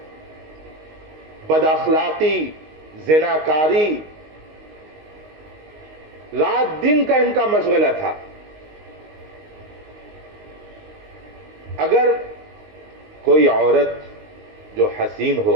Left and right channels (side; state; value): left; late; 19 ms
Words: بد اخلاقی، زناکاری رات دن کا ان کا مشغلہ تھا۔ اگر کوئی عورت جو حسین